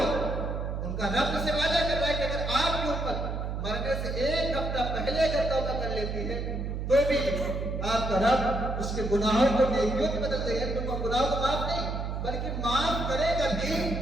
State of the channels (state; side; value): noise; right; hum, 3 dB below the sound